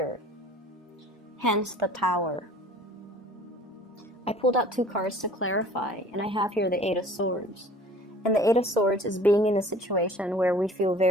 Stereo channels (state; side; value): normal; both; correlation 0.49